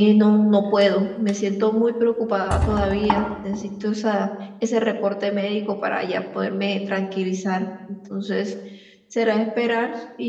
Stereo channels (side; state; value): both; identical; correlation 1.00